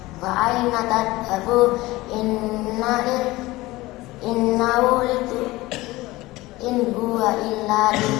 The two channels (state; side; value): quieter; right; 19.4 dB